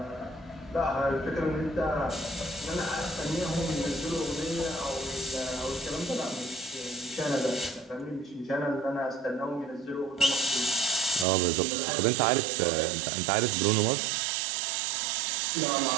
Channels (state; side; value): drops out; left; at 11.2 s